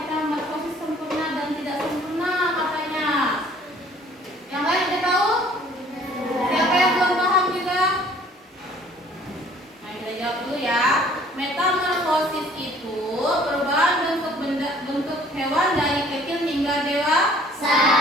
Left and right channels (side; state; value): both; normal; correlation 0.55